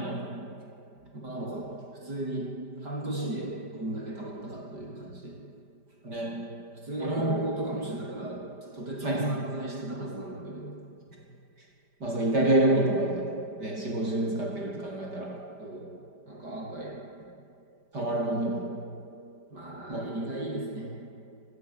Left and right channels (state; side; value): late; left; 5.0 ms